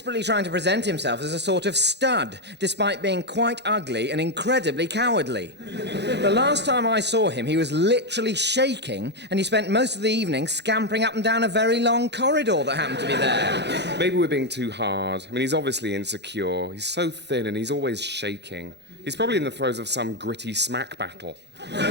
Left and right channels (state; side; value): late; left; 0.50 ms